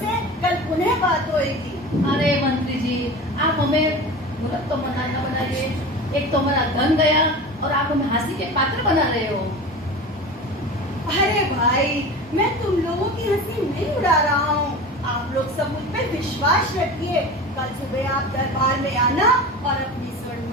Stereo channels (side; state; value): both; normal; correlation 0.33